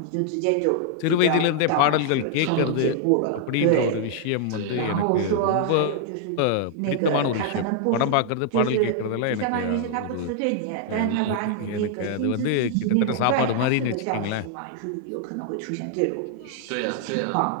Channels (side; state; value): both; different; correlation 0.00